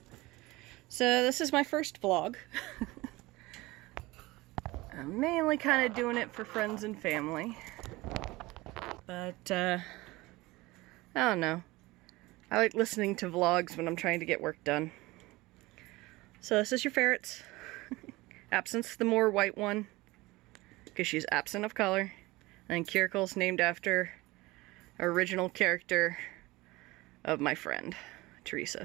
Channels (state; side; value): quieter; left; 20.8 dB